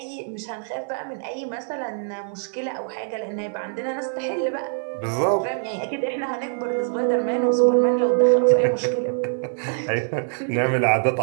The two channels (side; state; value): left; silent; digital silence